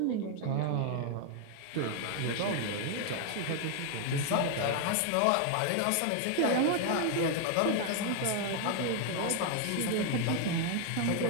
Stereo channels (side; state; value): both; different; correlation 0.00